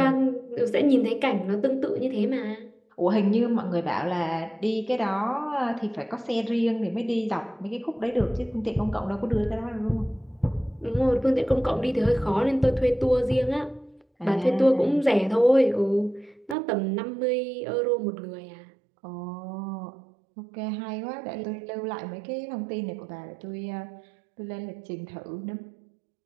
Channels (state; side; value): drops out; left; at 16.6 s